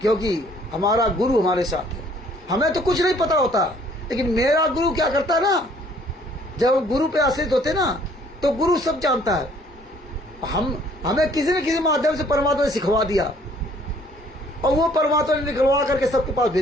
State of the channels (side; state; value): both; normal; correlation 0.59